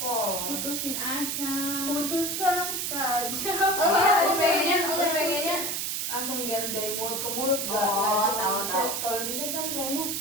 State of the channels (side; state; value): right; noise; hiss, 1 dB below the sound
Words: putusin aja. Putuskan saja. Gue pengennya langsung biar dari mulut ke mulut, gak tahu. kalau di chat kan kayaknya